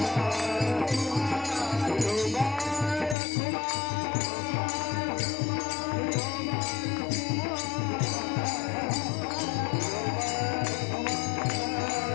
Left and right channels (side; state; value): right; drops out; at 3.2 s